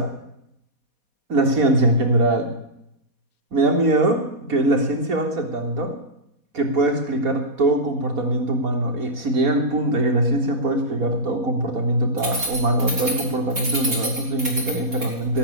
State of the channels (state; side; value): late; left; 4.2 ms